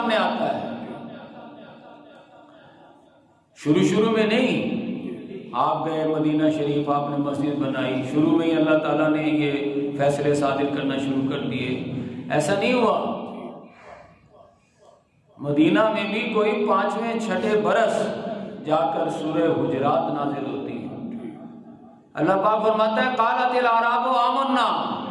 آتا ہے۔ شروع میں نہیں، آپ گئے مدینہ شریف، آپ نے مسجد بنائی، شروع میں ہی اللہ تعالیٰ نے یہ فیصلے صادر کرنا شروع کر دیے، ایسا نہیں ہوا۔ مدینہ میں بھی کوئی 5ویں 6 برس جا کر سورہ حجرات نازل ہوتی ہے۔ اللہ پاک فرماتا ہے قالت الاعراب آمنا،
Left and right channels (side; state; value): both; identical; correlation 1.00